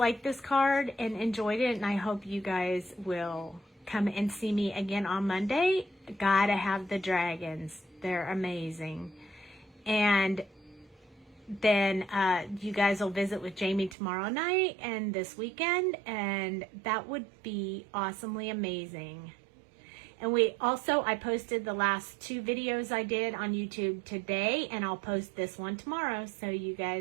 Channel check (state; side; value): drops out; left; at 14.0 s